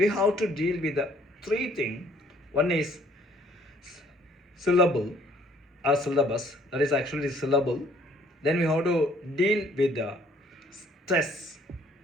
have to deal with the three things. One is syllable or syllabus, that is actually syllable. Then we have to deal with the stress.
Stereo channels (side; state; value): both; normal; correlation 0.60